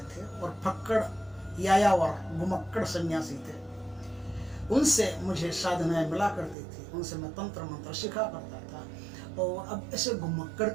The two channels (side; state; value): left; drops out; at 6.6 s